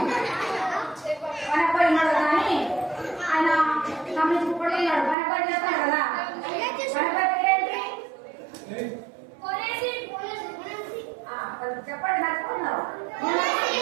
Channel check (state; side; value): drops out; left; at 5.2 s